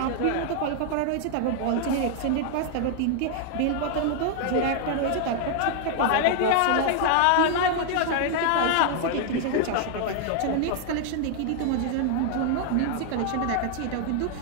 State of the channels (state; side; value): different; both; correlation 0.00